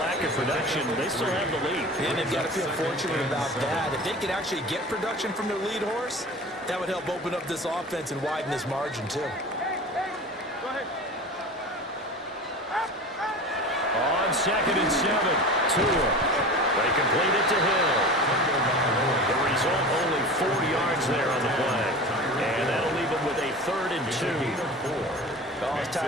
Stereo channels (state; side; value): normal; both; correlation 0.35